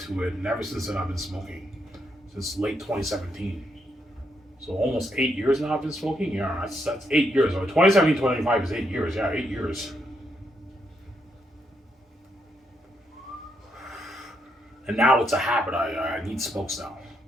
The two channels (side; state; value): both; normal; correlation 0.78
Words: to it. And ever since then, I've been smoking. Since late 2017. So almost 8 years now I've been smoking? Yeah, that's 8 years. 2017, 2025 is 8 years. Yeah, 8 years. And now it's a habit. I need smokes now.